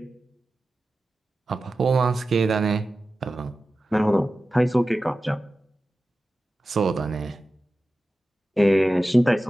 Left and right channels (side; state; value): both; normal; correlation 0.94